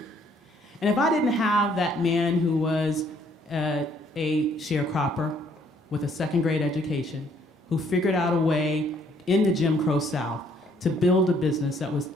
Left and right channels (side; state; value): both; normal; correlation 0.65